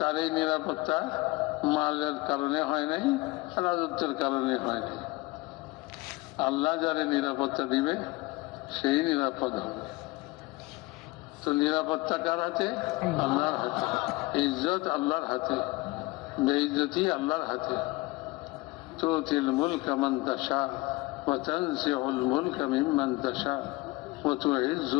এই নিরাপত্তা মালের কারণে হয় নাই, রাজত্বের কারণে হয় নাই। আল্লাহ যারে নিরাপত্তা দিবে সেই নিরাপদ হবে। তো নিরাপত্তা কার হাতে? আল্লাহর হাতে। ইজ্জত আল্লাহর হাতে, বেইজ্জতি আল্লাহর হাতে। তুতিল মুলকা মান তাশা ওয়া তানজিউল মুলকা মিম্মান তাশা ওয়া তুইজ্জু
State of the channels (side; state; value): right; quieter; 22.2 dB